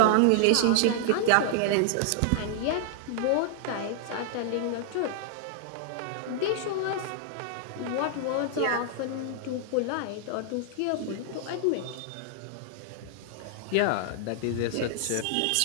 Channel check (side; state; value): both; different; correlation -0.01